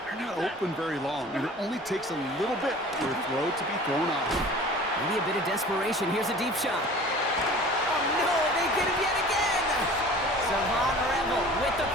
not open very long, and it only takes a little bit for a throw to be thrown off. Maybe a bit of desperation. Here's a deep shot. Oh, no, they get it yet again. Savon Revel with the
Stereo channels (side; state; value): both; normal; correlation 0.44